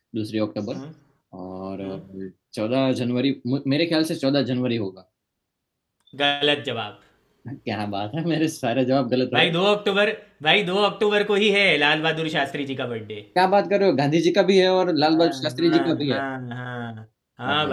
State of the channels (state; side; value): identical; both; correlation 1.00